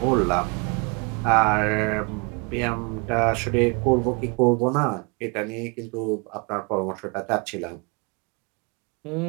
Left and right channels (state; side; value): quieter; left; 31.2 dB